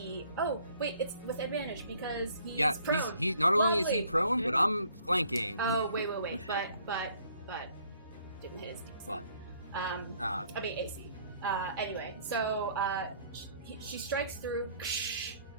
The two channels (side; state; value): both; inverted; correlation -0.61